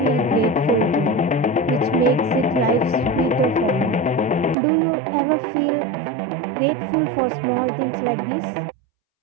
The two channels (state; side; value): drops out; left; at 4.5 s